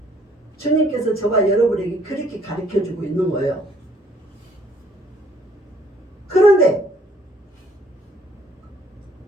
주님께서 저와 여러분에게 그렇게 가르쳐주고 있는 거예요. 그런데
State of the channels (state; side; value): normal; both; correlation 0.62